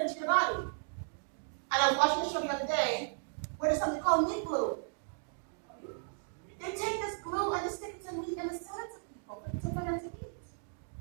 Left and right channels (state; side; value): silent; left; digital silence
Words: into your body. And I was watching the show the other day where there's something called meat glue. They take this glue and they stick it to meat and they sell it to people for them to eat.